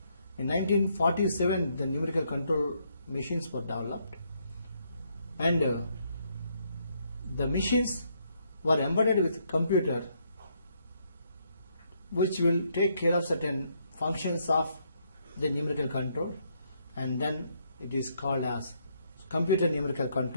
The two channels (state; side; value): inverted; both; correlation -0.73